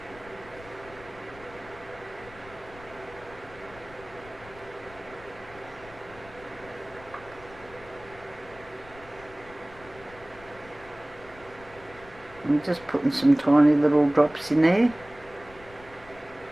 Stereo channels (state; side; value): noise; left; rumble, 21 dB below the sound